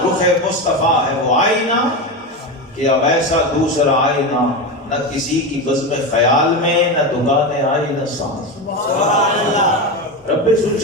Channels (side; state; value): both; normal; correlation 0.18